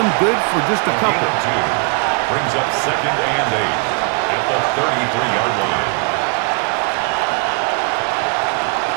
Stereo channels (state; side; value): quieter; left; 35.6 dB